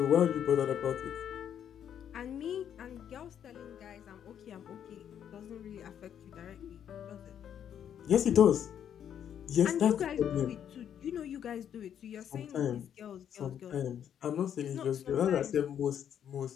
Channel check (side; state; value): right; quieter; 9.2 dB